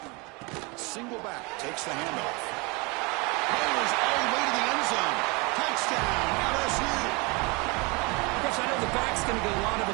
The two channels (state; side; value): quieter; left; 28.0 dB